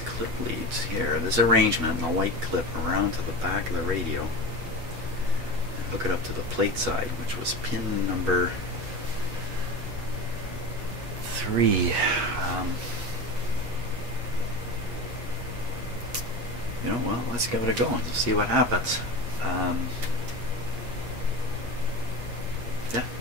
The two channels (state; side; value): late; left; 8.3 ms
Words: clip leads here, this arrangement, and the white clip around to the back of the radio, and hook it up to the plate side, which was pin number 3. You know, well, let's give it a go and see what happens. Yeah,